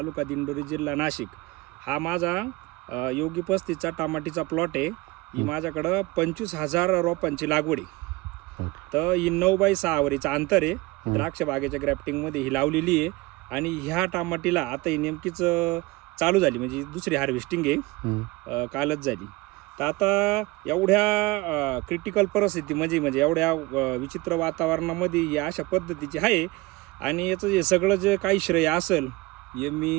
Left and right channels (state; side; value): quieter; left; 21.3 dB